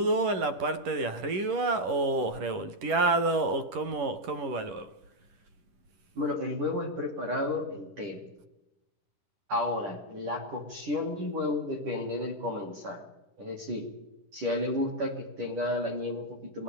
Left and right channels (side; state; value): left; late; 11 ms